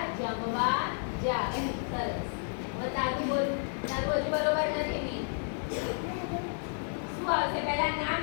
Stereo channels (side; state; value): right; silent; digital silence